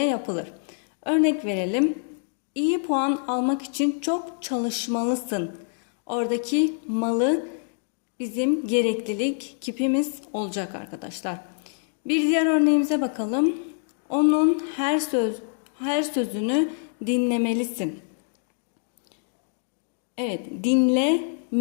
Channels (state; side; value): silent; right; digital silence